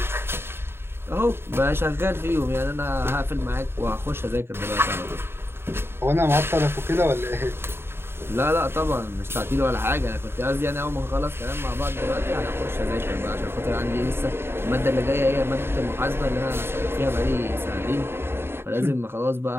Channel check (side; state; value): left; late; 0.11 ms